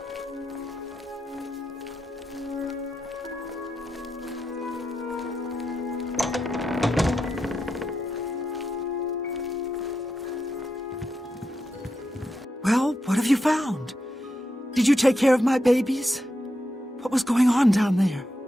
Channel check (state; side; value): normal; both; correlation 0.86